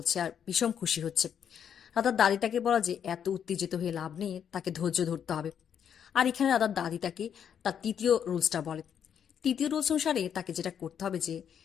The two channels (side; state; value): right; quieter; 8.4 dB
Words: আর বিষম খুশি হচ্ছে। রাধার দাদি তাকে বলা যে এত উত্তেজিত হয়ে লাভ নেই, তাকে ধৈর্য ধরতে হবে। আর এখানে রাধার দাদি তাকে তার তৃতীয় রুলসটা বলে। তৃতীয় রুলস অনুসারে তাকে যেটা করতে হবে যে